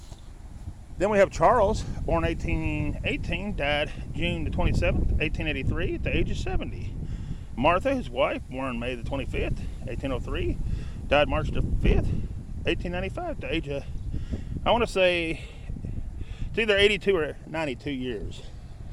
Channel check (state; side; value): identical; both; correlation 1.00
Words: Then we have Charles, born 1818, died June the 27th, 1883, at the age of 70. Martha, his wife, born May the 25th, 1803, died March the 5th, 1895, at the age of, I want to say, it's either 82 or 92 years.